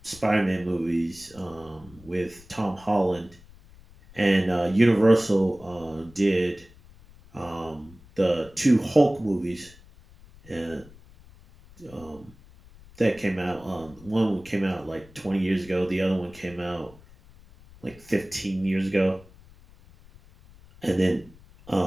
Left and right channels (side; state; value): left; noise; rumble, 23 dB below the sound